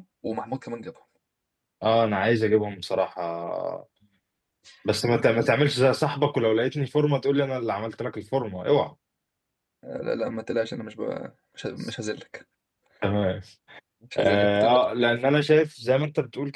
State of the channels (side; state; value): both; identical; correlation 1.00